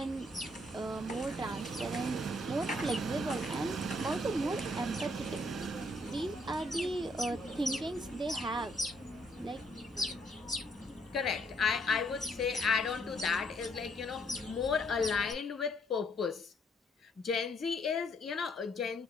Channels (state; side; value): normal; both; correlation 0.69